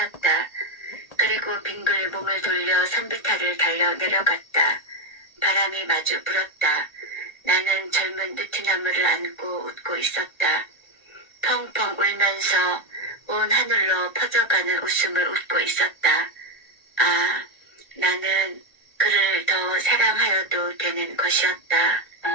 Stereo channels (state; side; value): late; right; 1.8 ms